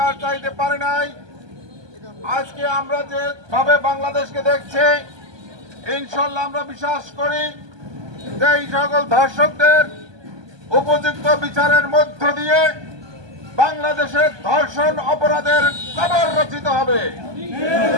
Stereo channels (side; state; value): left; late; 1.2 ms